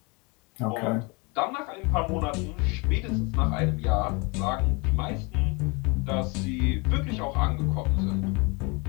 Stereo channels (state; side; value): quieter; right; 29.2 dB